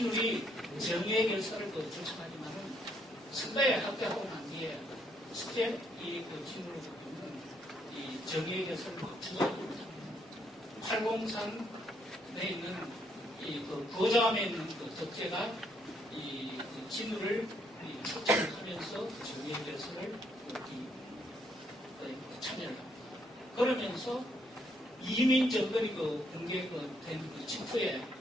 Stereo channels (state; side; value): normal; both; correlation 0.72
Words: 정의의 결사를 주창하지만은 선배에 합격하고 난 뒤에 실제 이 진울을 보면 이 정의의 결사를 주장하고 있습니다. 팔공산에 있는 고자함에 있는 덕제가 이 진울을 초청하면서 정의의 결사를 참여를 합니다. 그러면서 이민 정권이 붕괴된 직후에